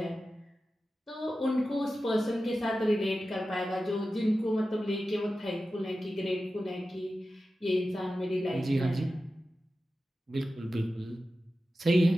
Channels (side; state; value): both; normal; correlation 0.93